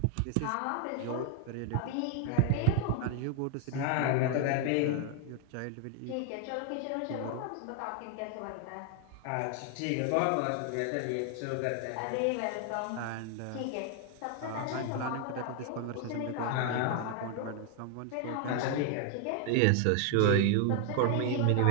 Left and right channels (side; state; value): both; different; correlation 0.00